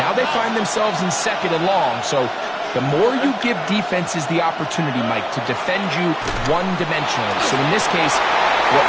they find themselves in second and long. So the more you give defenses the opportunity, Mike, to defend you one-dimensionally. So in this case,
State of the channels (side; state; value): both; identical; correlation 1.00